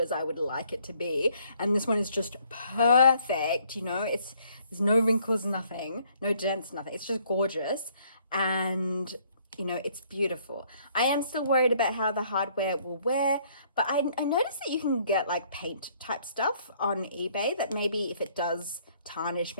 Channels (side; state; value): both; inverted; correlation -0.64